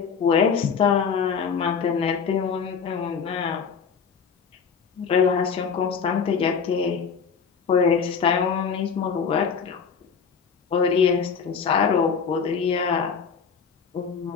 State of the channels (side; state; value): right; quieter; 6.1 dB